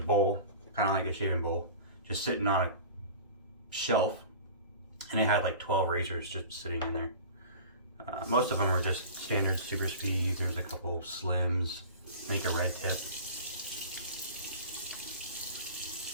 kind of like a shaving bowl, just sitting on a shelf, and it had like 12 razors just sitting in there. Most of them were just standard super speeds. There's a couple slims, I think a red tip.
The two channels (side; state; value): both; inverted; correlation -0.38